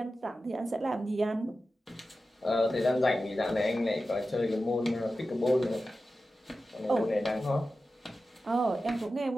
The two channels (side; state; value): both; normal; correlation 0.93